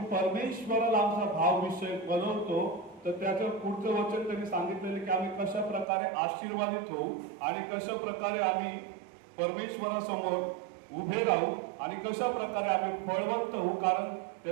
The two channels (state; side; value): drops out; left; at 5.9 s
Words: परमेश्वराला आमचा भाव विषय बनवतो तर त्याचं पुढचं वचन त्यांनी सांगितलेलं की आम्ही कशा प्रकारे आशीर्वादित होऊ आणि कशा प्रकारे आम्ही परमेश्वरासमोर उभे राहू आणि कशा प्रकारे आम्ही फळवंत होऊ. कारण